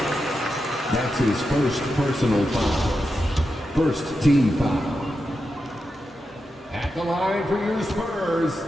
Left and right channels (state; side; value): normal; both; correlation 0.88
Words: That's his first personal foul. First team foul. At the line for your Spurs,